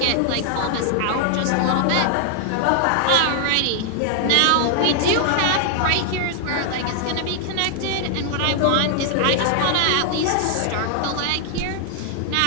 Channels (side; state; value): both; different; correlation 0.00